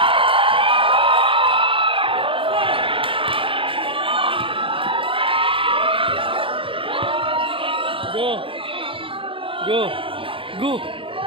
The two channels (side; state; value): left; late; 0.25 ms